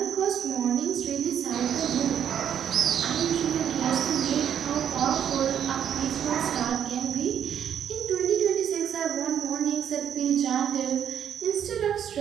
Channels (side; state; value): left; quieter; 9.1 dB